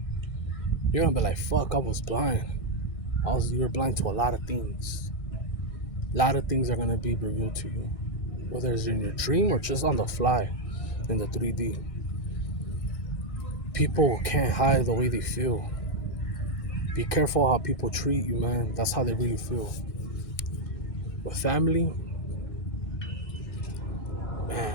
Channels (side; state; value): right; late; 1.6 ms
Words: You're gonna be like, fuck, I was blind. You're blind to a lot of things. A lot of things are gonna be revealed to you. Whether it's in your dream or just on the fly in the 3D. People can't hide the way they feel. Be careful how people treat you, man. That's how they really feel. With family,